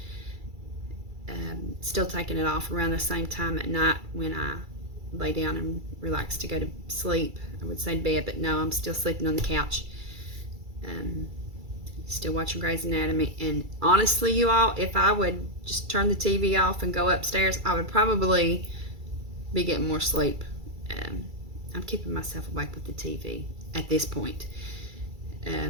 Still taking it off around the same time at night when I lay down and relax to go to sleep. I would say bed, but no, I'm still sleeping on the couch. Still watching Grey's Anatomy. And honestly, you all, if I would just turn the TV off and go upstairs, I would probably be getting more sleep. I'm keeping myself awake with the TV at this point.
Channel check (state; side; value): late; left; 2.3 ms